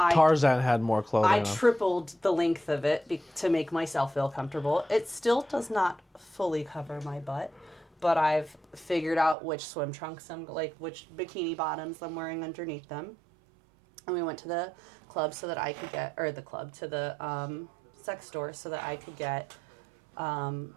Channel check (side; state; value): left; drops out; at 9.3 s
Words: had more clothing. I tripled the length of it to make myself feel comfortable. It still does not fully cover my butt, but I've figured out which swim trunks which bikini bottoms I'm wearing underneath them. And we went to the club so that I could get, to the sex store so that I could get